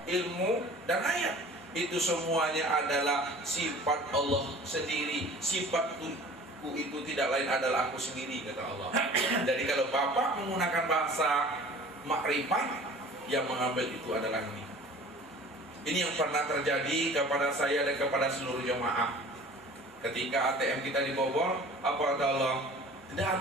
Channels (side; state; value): both; normal; correlation 0.45